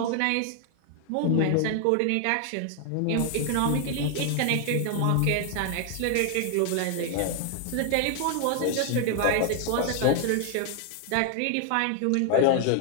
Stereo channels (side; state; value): both; different; correlation 0.00